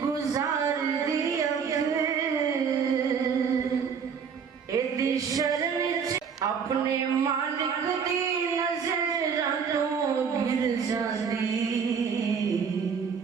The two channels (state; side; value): quieter; left; 6.5 dB